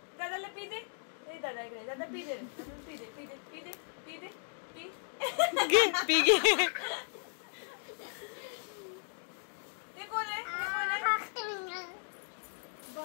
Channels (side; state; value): right; silent; 54 dB below the other